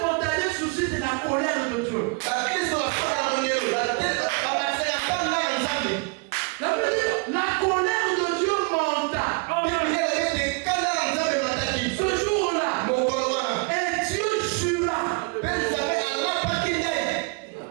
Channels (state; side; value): quieter; left; 32.4 dB